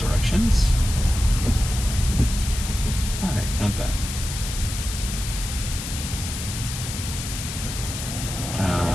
Alright, not bad.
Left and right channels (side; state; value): left; noise; hiss, 7 dB below the sound